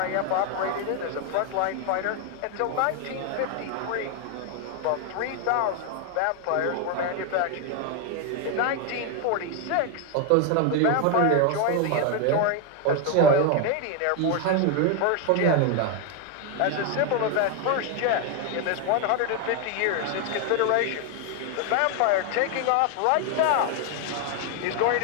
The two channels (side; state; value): both; different; correlation 0.01